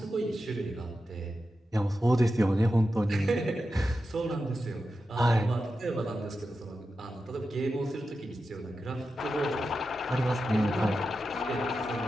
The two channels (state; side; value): normal; both; correlation 0.90